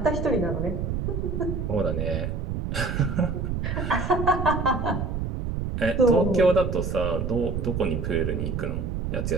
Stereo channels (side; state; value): right; noise; rumble, 2 dB below the sound